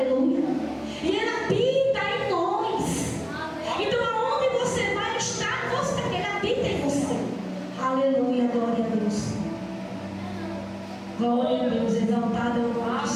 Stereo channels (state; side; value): identical; both; correlation 1.00